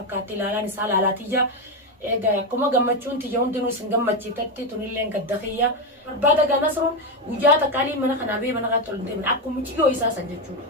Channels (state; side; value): normal; both; correlation 0.08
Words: ilaalaan isaa laalaatii Ega kuma gammachuun tiyya hundinuu isin gammachiifatti tunillee gadda kiyya barbaada ganasruun guyyaa takkaalii mana kanaa bee mana kaa tolun deeman akkuma ciyyoo isaa san